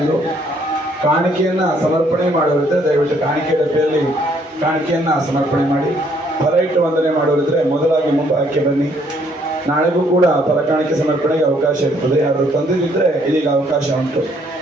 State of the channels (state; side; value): normal; both; correlation 0.66